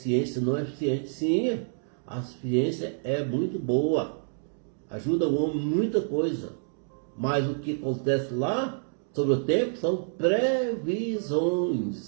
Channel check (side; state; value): left; silent; digital silence